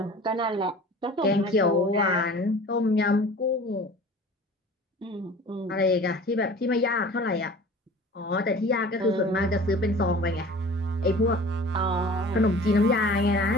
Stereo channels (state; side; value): normal; both; correlation 0.43